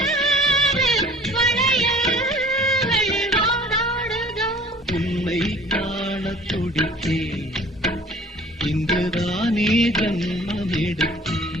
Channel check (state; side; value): normal; both; correlation 0.50